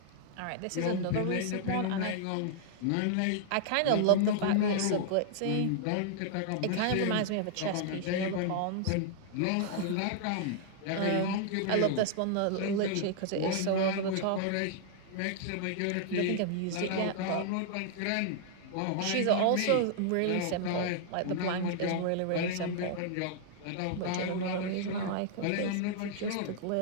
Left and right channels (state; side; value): different; both; correlation -0.01